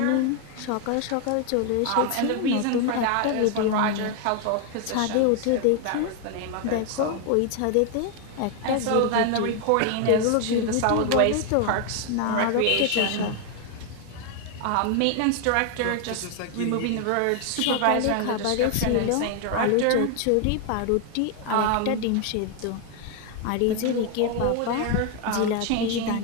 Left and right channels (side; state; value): both; different; correlation 0.01